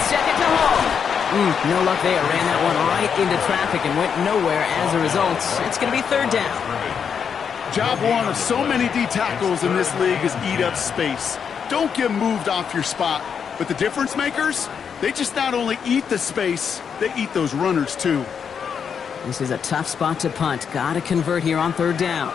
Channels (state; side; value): quieter; right; 7.0 dB